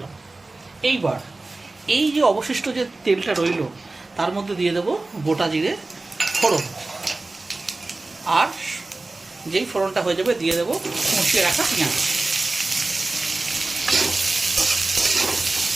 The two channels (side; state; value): left; quieter; 3.2 dB